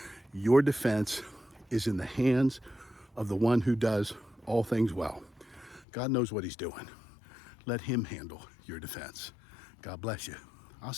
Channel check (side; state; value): right; drops out; at 5.9 s